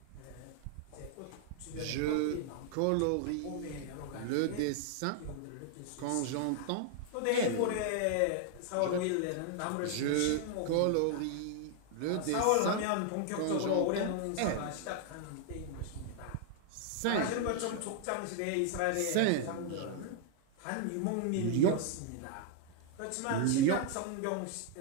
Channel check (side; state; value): both; different; correlation 0.00